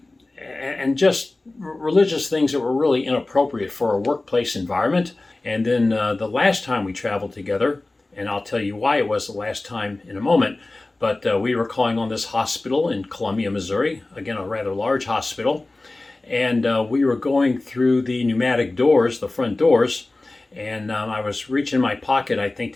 just religious things that were really inappropriate for a workplace environment. And then the last time we traveled together, and I'll tell you why it was the last time in a moment, but we were calling on this hospital in Columbia, Missouri, again, a rather large hospital. And we were going through the pneumatic doors, the front doors, and I was reaching my pocket, I think,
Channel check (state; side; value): quieter; right; 3.0 dB